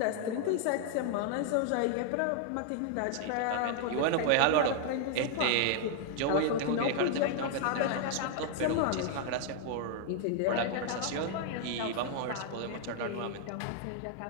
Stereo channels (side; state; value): both; different; correlation 0.00